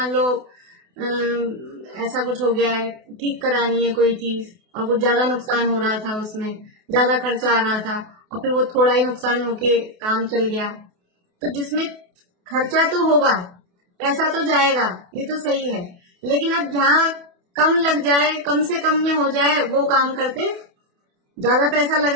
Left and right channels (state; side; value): late; left; 28 ms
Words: लो ऐसा कुछ हो गया है, ठीक करानी है कोई चीज और कुछ ज्यादा नुकसान हो रहा था, उसमें ज्यादा खर्चा आ रहा था और फिर वो थोड़ा ही नुकसान होके काम चल गया। तो जिसमें खर्चा तो होगा, पैसा तो जाएगा, ये तो सही है, लेकिन अब जहाँ कम लग जाए, कम से कम में हो जाए, वो काम करते। ज्यादा पैसा लग